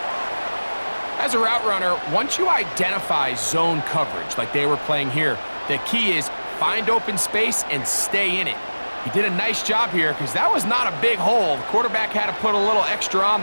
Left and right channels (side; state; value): both; inverted; correlation -1.00